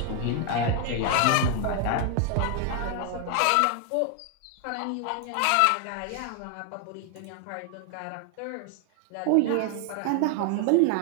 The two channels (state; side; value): different; both; correlation 0.00